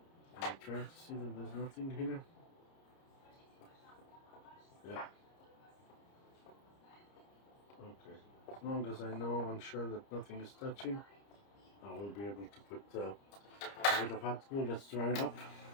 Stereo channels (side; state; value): right; late; 30 ms